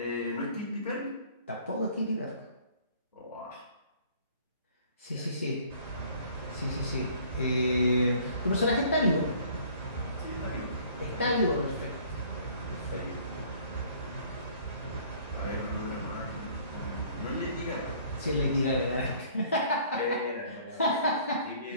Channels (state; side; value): inverted; both; correlation -0.55